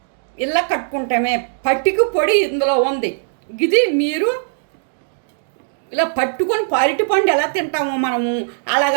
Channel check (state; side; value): silent; left; digital silence